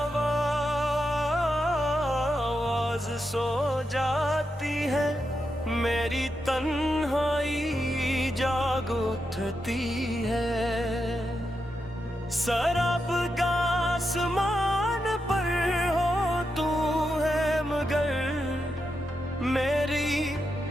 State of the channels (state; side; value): normal; both; correlation 0.86